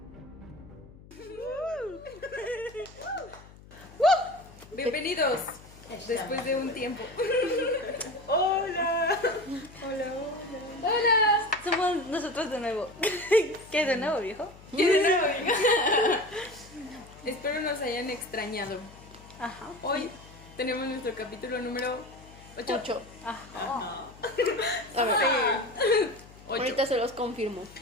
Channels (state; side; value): noise; left; hum, 21 dB below the sound